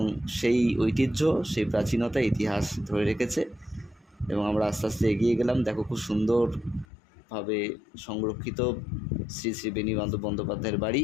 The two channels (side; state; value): right; drops out; at 6.9 s